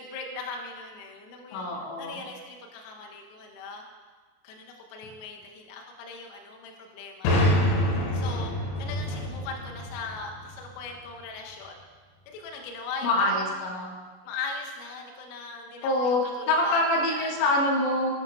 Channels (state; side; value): late; right; 32 ms